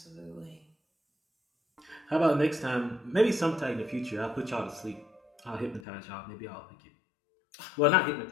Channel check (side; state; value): right; drops out; at 5.9 s